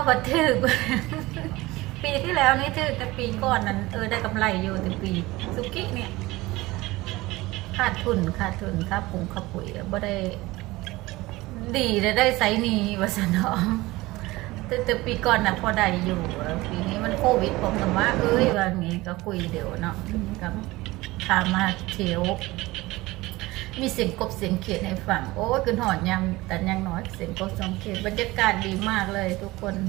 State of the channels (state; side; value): quieter; left; 19.9 dB